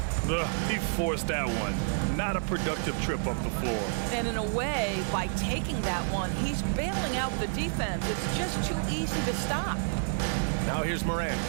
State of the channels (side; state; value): left; silent; digital silence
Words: He forced that one. Not a productive trip up the floor. And in a way, by taking that one, he's bailing out the defense. It's just too easy to stop. Now here's Morant.